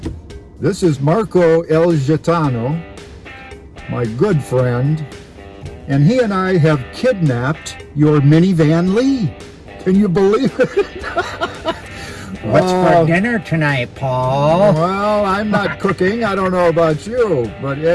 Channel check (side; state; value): both; identical; correlation 1.00